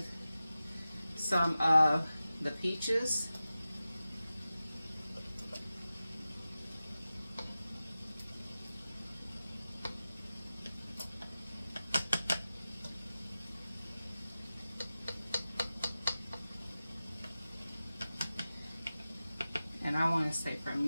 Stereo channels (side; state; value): both; inverted; correlation -0.95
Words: some of the peaches. And I want to say for